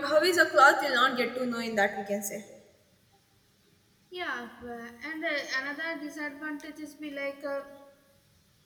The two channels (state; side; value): identical; both; correlation 1.00